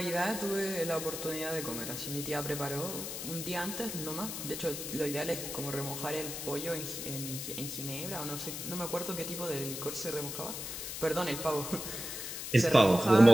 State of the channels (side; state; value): left; noise; hiss, 6 dB below the sound